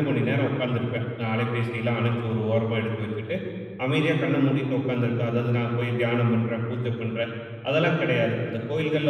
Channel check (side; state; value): both; identical; correlation 1.00